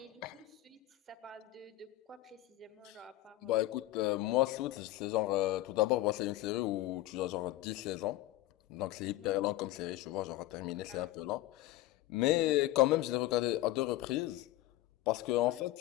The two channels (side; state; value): right; quieter; 16.2 dB